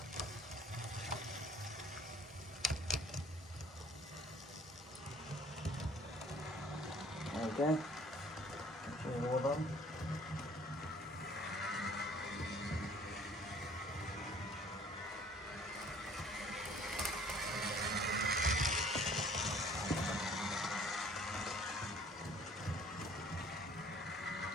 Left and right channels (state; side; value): normal; both; correlation 0.55